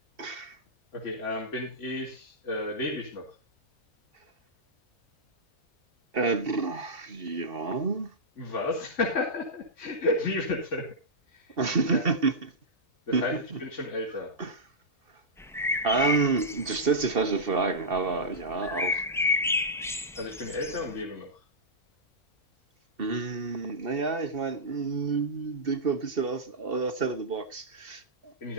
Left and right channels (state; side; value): normal; both; correlation -0.13